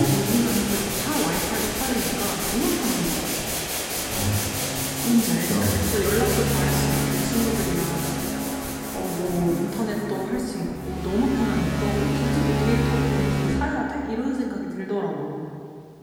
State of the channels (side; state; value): both; identical; correlation 1.00